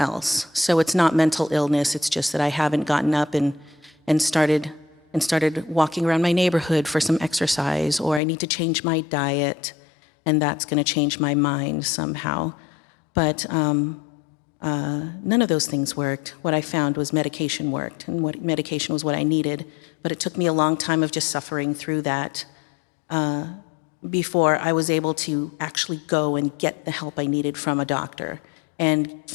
So it's not mental illness, it's just that I haven't gotten up and started walking around my neighborhood for some exercise, or I need to change my diet, and that's gonna change my mind somehow. But none of those things worked. What I found was medication worked, and what medication was what I needed. But it took me a long time of just suffering through that before I was able to actually go and get the help I needed from a doctor, and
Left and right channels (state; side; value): drops out; right; at 8.2 s